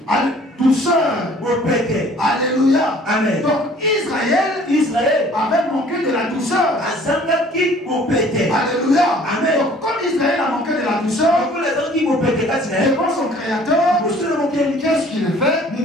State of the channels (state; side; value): normal; both; correlation 0.53